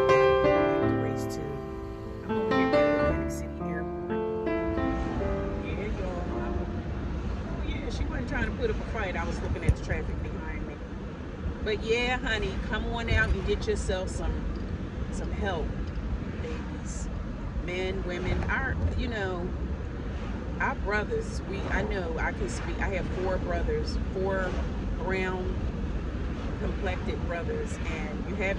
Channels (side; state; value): both; identical; correlation 1.00